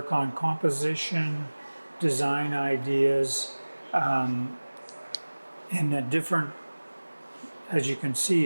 on composition, design ideas, in a different, as you can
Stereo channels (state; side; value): inverted; both; correlation -1.00